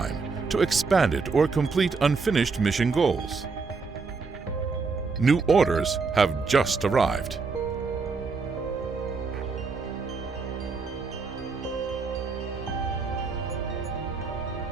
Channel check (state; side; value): quieter; left; 4.6 dB